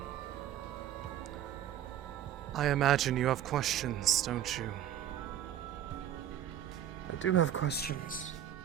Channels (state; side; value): quieter; left; 11.0 dB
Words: I imagine you have questions, don't you? I do have questions.